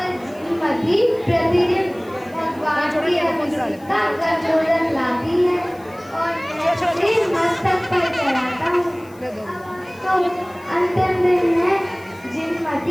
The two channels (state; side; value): noise; left; hiss, 27 dB below the sound